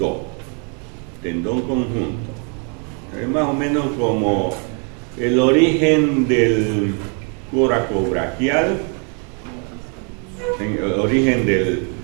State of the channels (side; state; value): left; quieter; 39.1 dB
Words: Tendón conjunto. Es más o menos como el origen del coracobraquial, el origen del